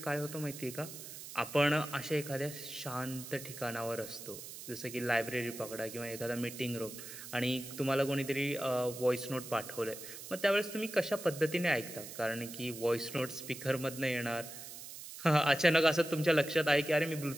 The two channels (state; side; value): noise; right; hiss, 12 dB below the sound